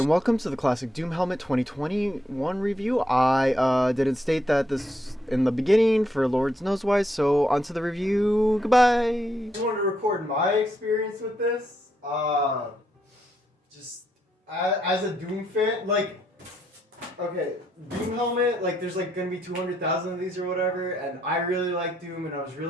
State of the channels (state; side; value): normal; both; correlation 0.77